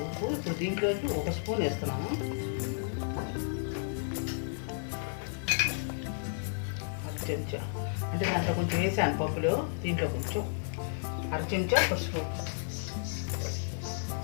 ఉప్పు. ఇప్పుడు దీంట్లోకి 1 స్పూన్ వేస్తున్నాను. చెంచా అంటే దాంట్లో కొంచెం వేసాను పప్పులో, దీంట్లో కొంచెం 1/2 చెంచా పసుపు,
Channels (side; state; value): right; silent; 56 dB below the other